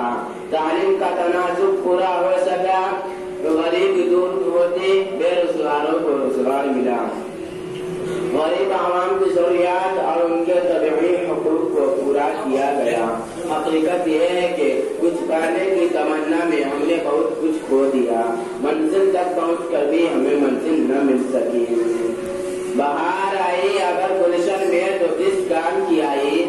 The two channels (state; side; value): identical; both; correlation 1.00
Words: تعلیم کا تناسب پورا ہو سکا، غریب دور ہوتے، بے روزگاروں کو روزگار ملا، غریب عوام کی ضروریات اور ان کے طبعی حقوق کو پورا کیا گیا۔ حقیقت یہ ہے کہ کچھ کرنے کی تمنا میں ہم نے بہت کچھ کھو دیا، منزل تک پہنچ کر بھی ہمیں منزل نہ مل سکی۔ بہار آئی اگر گلشن میں تو کس کام کی آئی،